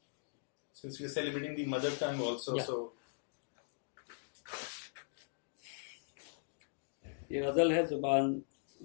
Since we are celebrating the mother tongue also, Yeah. so ये गज़ल है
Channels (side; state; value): right; silent; digital silence